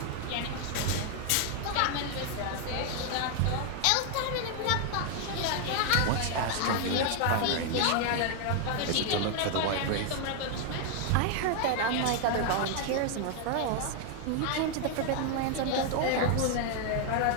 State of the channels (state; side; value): different; both; correlation 0.00